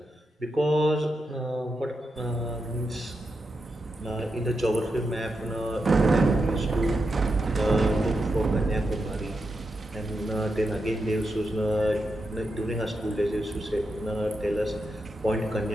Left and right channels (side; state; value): both; normal; correlation 0.86